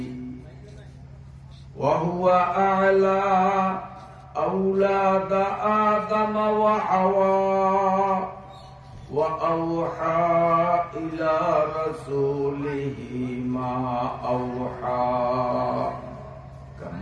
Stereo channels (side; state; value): both; identical; correlation 1.00